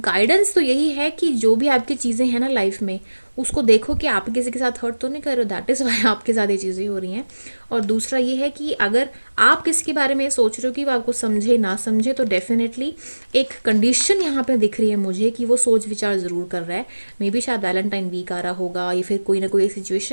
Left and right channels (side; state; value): both; inverted; correlation -1.00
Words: तो यही है कि जो भी आपकी चीज़ें हैं ना लाइफ में, उसको देखो कि आप किसी के साथ हर्ट तो नहीं कर रहे हो, दैट इज़ वाई आपके साथ ये चीज़ें हो रही हैं। और दूसरा ये है कि अगर आप किसी के बारे में सोच रहे हो कि वो आपको समझे ना समझे, तो डेफिनेटली एक कंडीशन यहाँ पे दिख रही है मुझे कि वो सोच विचार ज़रूर कर रहा है। मे बी शायद वैलेंटाइन वीक आ रहा होगा या फिर कोई ना कोई